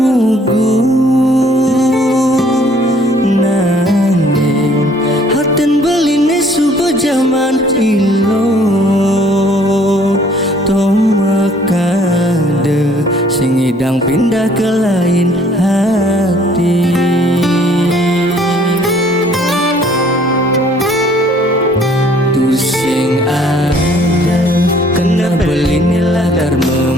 nanging haten beline subuh zaman ilo tomakade sing idang pindah ke lain hati. Sing ada kena beline latar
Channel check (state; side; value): normal; both; correlation 0.59